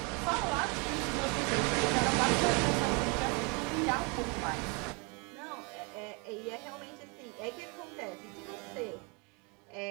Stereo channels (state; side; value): quieter; left; 32.2 dB